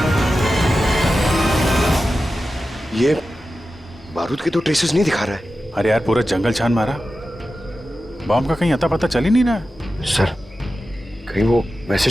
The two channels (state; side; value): normal; both; correlation 0.93